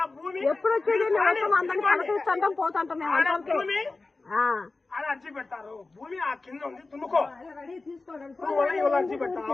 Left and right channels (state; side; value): quieter; right; 3.6 dB